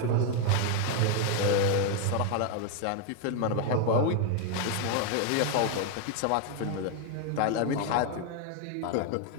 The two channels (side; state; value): both; different; correlation 0.01